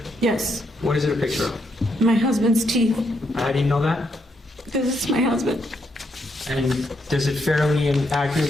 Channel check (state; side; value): normal; both; correlation 0.77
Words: Yes, What is it a picture of? my husband's teeth. How do you know that? This is my husband. And does it fairly and